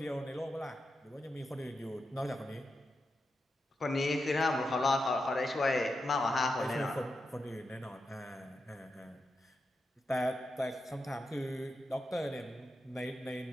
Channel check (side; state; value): both; normal; correlation 0.88